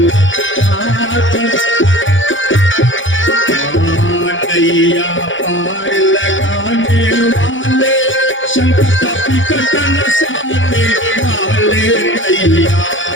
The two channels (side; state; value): right; late; 0.56 ms